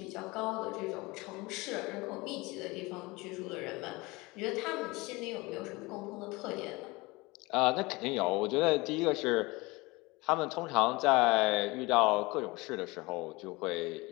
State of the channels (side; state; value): right; quieter; 23.3 dB